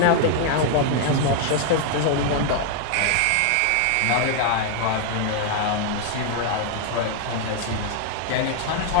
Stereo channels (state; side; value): different; both; correlation 0.00